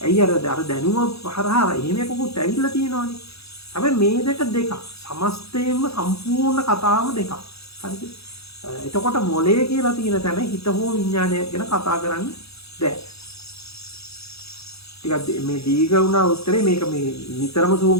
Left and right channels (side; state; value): right; late; 0.78 ms